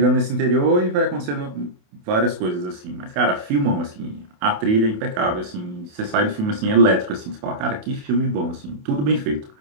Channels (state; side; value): late; left; 28 ms